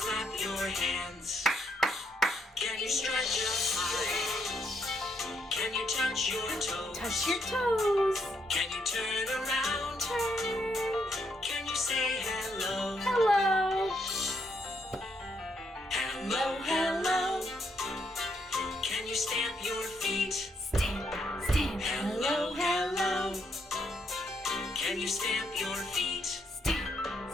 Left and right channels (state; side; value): normal; both; correlation 0.75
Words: your hands? Can you stretch up high? Can you touch your toes? Touch your toes. Can you turn around? Turn. Can you say hello? Hello. Hello, hello. Can you stamp your feet? Stamp, stamp. Hello, hello. Can you stamp your feet? Stamp,